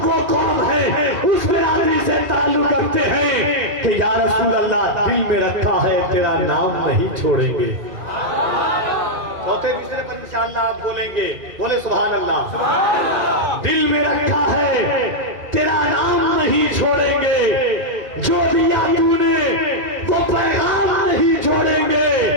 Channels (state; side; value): late; left; 2.4 ms